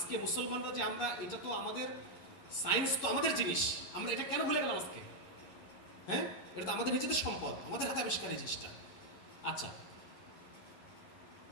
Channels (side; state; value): right; late; 11 ms